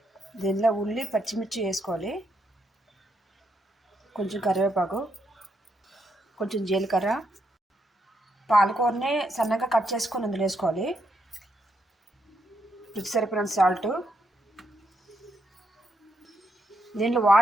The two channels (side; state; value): both; normal; correlation 0.78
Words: దీనిలో ఉల్లి పచ్చిమిర్చి వేసుకోవాలి, కొంచెం కరివేపాకు, కొంచెం జీలకర్ర, పాలకూరని సన్నగా కట్ చేసుకొని అందులో వేసుకోవాలి, రుచి సరిపోయినంత సాల్ట్. దీంట్లో